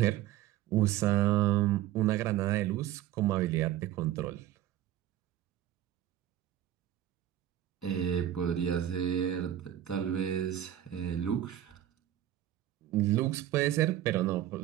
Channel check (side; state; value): left; quieter; 12.4 dB